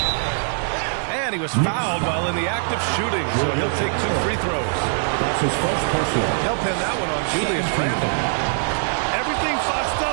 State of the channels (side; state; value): left; silent; 64 dB below the other